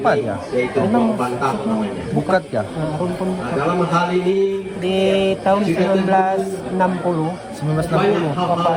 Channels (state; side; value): identical; both; correlation 1.00